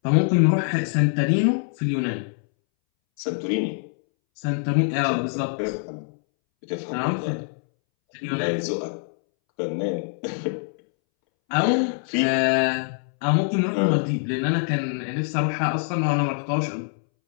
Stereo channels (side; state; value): right; silent; 62 dB below the other